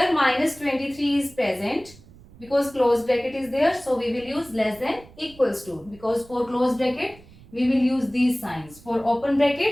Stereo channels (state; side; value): noise; right; rumble, 23 dB below the sound